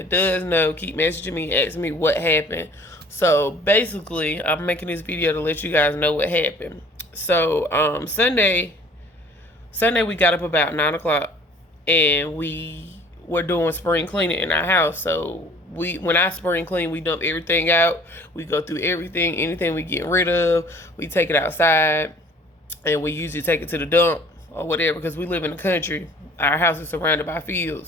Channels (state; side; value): normal; both; correlation 0.52